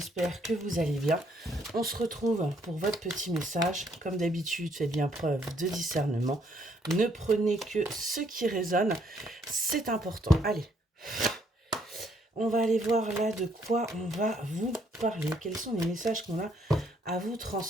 que vous allez bien. On se retrouve pour votre petit message. Comme d'habitude, faites bien preuve de discernement. Ne prenez que ce qui résonne, c'est important. Allez, on va aller voir là de quoi on va vous parler. Quels sont les messages qu'on a à vous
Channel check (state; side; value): normal; both; correlation 0.69